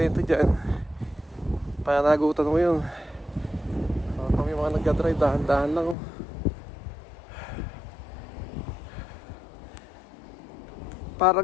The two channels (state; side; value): drops out; right; at 6.0 s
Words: dyan, panagutan mo yun. Pag may mga nagka-drive, dahan-dahan lang, oh. Parang